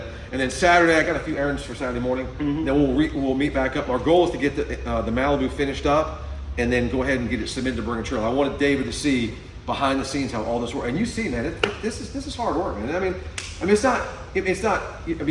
then Saturday I got a few errands for Saturday morning. Mm-hmm. Then we'll meet back up. Our goal is to get the Malibu finished up, and then go ahead and get it submitted to Bring a Trailer. I wanted David to see behind the scenes how all this works, and you see, man, this is hard work, man. I mean, it's not.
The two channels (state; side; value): identical; both; correlation 1.00